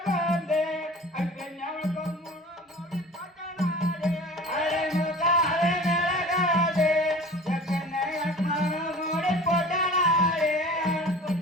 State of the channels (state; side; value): normal; both; correlation 0.41